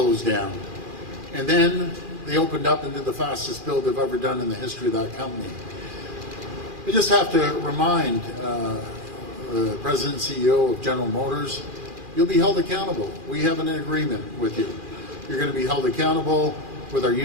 down. And then they opened up and did the fastest build they've ever done in the history of that company. I just have to remind the President and CEO of General Motors, you'll be held accountable. We have an agreement with you. You're going to be held accountable with our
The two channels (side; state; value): left; late; 2.4 ms